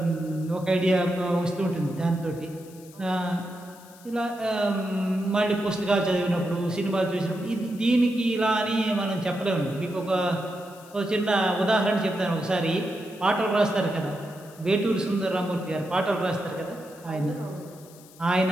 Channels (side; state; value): left; noise; hiss, 23 dB below the sound